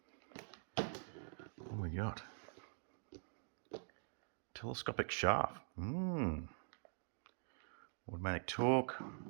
What do we got? Telescopic shaft. Automatic torque.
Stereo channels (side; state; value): left; silent; digital silence